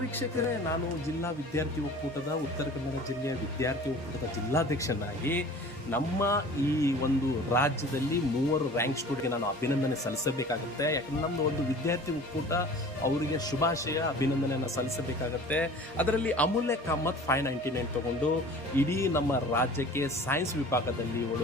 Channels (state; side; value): noise; right; hum, 27 dB below the sound